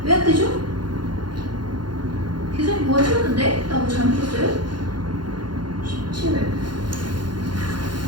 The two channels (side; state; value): left; late; 0.71 ms